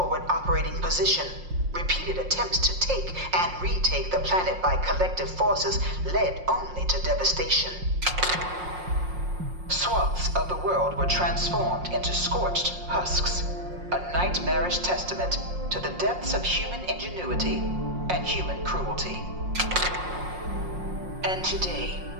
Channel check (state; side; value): late; left; 5.6 ms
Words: operating position, repeated attempts to take and retake the planet by collective forces led only to devastation. Swaths of the world were transformed into scorched husks, a nightmarish testament to the depths of human ingenuity and human cruelty. And today,